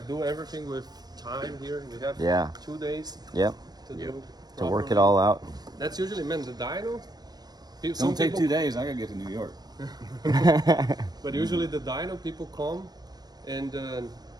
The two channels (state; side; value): late; left; 0.19 ms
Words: do everything with time here. We have Yeah. 2 days Yep. to do. To work it properly. all out. That's usually the dyno. Don't take 2 days. I gotta get to New York. But usually the dyno people come, and